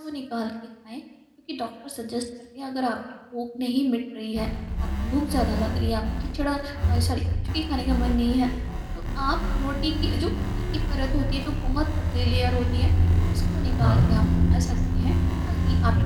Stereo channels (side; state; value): both; identical; correlation 1.00